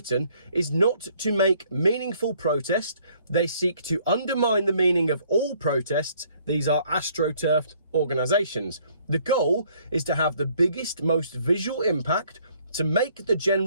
is not to make meaningful protest. They seek to undermine the meaning of all protests. These are astroturfed organisations. The goal is to have the biggest, most visual impact to make the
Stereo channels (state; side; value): inverted; both; correlation -0.63